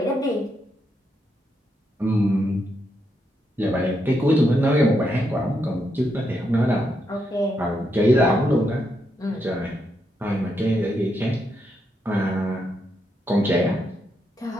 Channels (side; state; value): both; normal; correlation 0.81